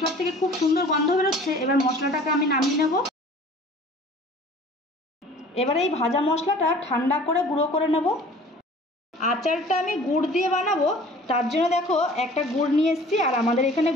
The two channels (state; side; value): normal; both; correlation 0.48